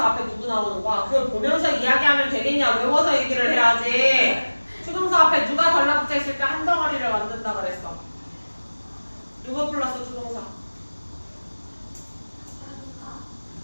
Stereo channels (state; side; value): inverted; both; correlation -1.00